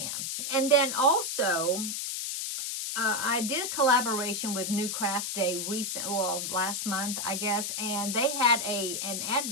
And then also, I did a collaboration with New Craft Day last month, I guess, and they had an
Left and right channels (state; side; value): noise; left; hiss, 3 dB below the sound